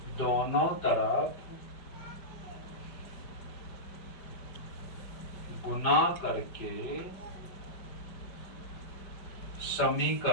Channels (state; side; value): late; right; 5.1 ms